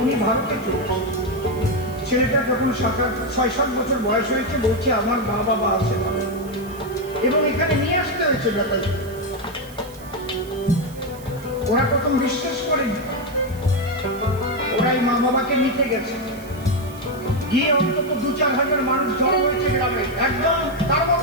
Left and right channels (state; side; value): noise; right; hiss, 21 dB below the sound